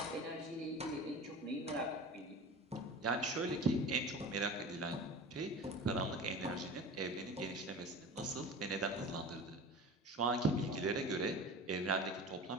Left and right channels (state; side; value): normal; both; correlation 0.35